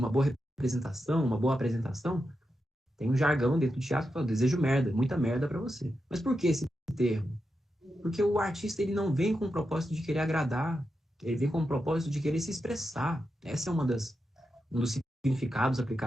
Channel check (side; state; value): both; normal; correlation 0.88